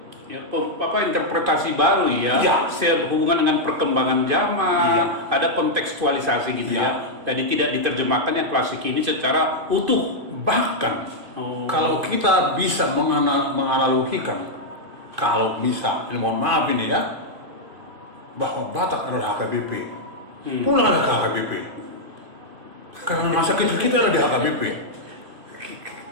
Ya, apa interpretasi baru ya, Iya. sehubungan dengan perkembangan zaman, Iya. ada kontekstualisasi gitu Iya. ya. Jadi tidak diterjemahkan yang klasik ini secara utuh. Bahkan Oh. kalau kita bisa menganalogikan, kalau bisa, ini mohon maaf ini ya, bahwa Batak adalah HKBP. Pulanglah ke HKBP. Karena masa kecil kita ada di HKBP.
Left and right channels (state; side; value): late; left; 2.5 ms